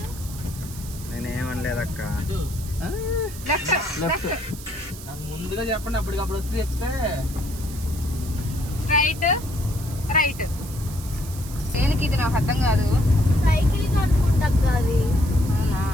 నేనేమనలేదు అక్క. ముందుగా చెప్పండి, అప్పటికప్పుడు వచ్చి చెప్తే. Straight right. దేనికి ఇది నాకు అర్థం కాదు. సైకిల్ అనుకుంటా అవి. అవునా?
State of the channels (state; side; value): noise; right; hiss, 15 dB below the sound